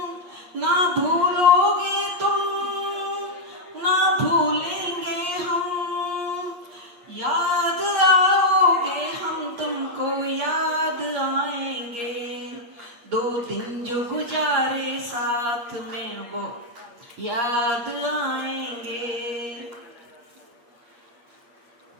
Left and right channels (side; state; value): left; late; 8.5 ms